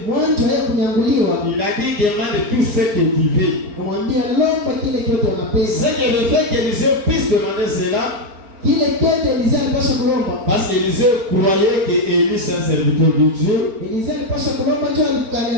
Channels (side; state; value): left; late; 4.4 ms